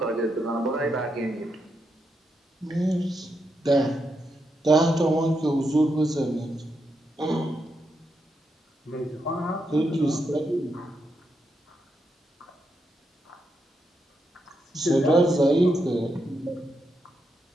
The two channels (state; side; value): normal; both; correlation 0.83